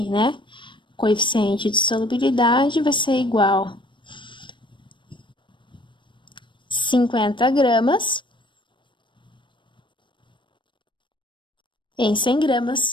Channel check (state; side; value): late; right; 0.23 ms